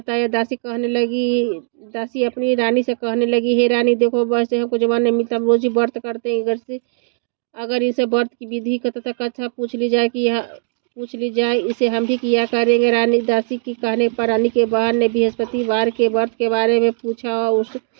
दासी अपनी रानी से कहने लगी, हे रानी, देखो, वैसे हमको जवान नहीं मिलता, हम रोज ही व्रत करते हैं। अगर इसे व्रत की विधि का तथा कथा पूछ ली जाए, इसे हम भी किया करेंगे। दासी की कहने पर रानी के बहन ने बृहस्पतिवार के व्रत के बारे में पूछा।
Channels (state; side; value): silent; left; digital silence